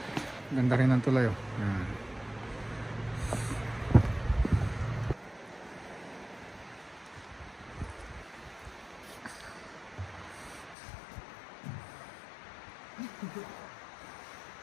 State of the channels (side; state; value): right; drops out; at 10.8 s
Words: Ganda rin ang tulay, oh. Yan.